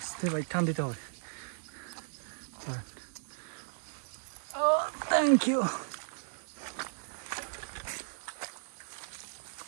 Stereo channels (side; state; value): left; silent; digital silence